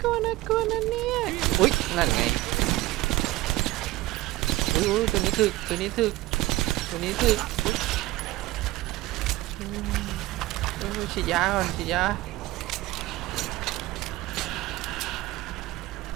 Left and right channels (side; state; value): left; quieter; 18.4 dB